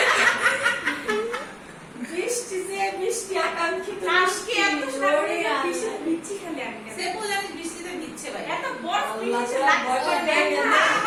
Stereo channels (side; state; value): both; identical; correlation 1.00